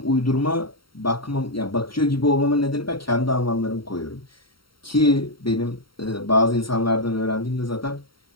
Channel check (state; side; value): late; right; 0.74 ms